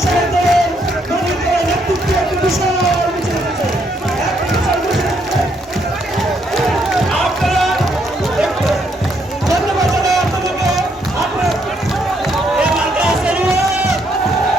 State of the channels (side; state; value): both; normal; correlation 0.73